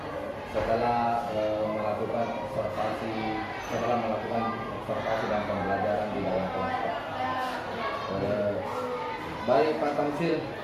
setelah melakukan observasi dan pembelajaran di dalam kelas. Baik Pak Tamsil,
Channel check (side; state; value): both; identical; correlation 1.00